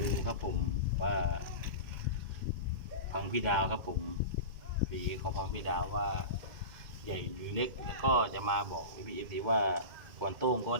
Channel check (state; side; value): late; left; 2.2 ms